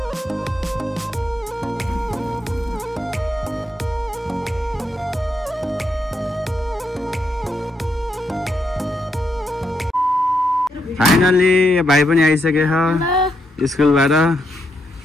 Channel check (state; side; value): normal; both; correlation 0.80